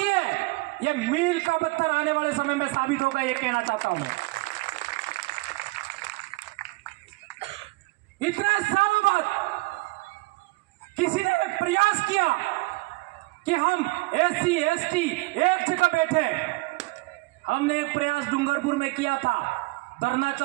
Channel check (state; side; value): quieter; left; 23.6 dB